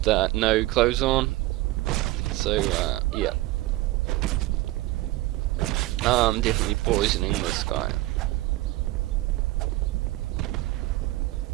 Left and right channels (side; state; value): left; quieter; 18.2 dB